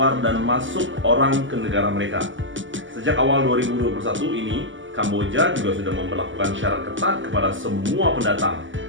dan masuk orang ke negara mereka. Sejak awal 2021 ini, Kamboja juga sudah memperlakukan syarat ketat kepada semua pendatang.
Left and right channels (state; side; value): late; left; 0.55 ms